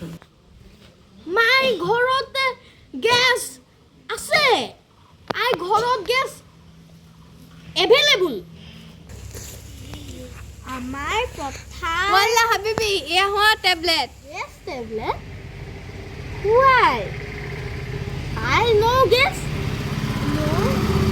My ঘৰতে gas আছে. ঘৰত gas available. আমাৰ পথাৰ ওয়ালা হাবিবি এয়া হোৱা tablet Yes, tablet. Why? I know gas. No.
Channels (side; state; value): both; identical; correlation 1.00